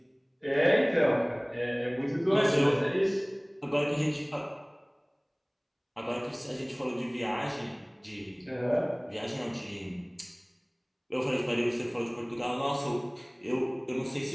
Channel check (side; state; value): both; identical; correlation 1.00